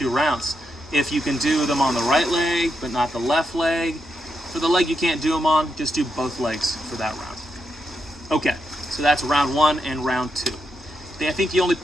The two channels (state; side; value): normal; both; correlation 0.84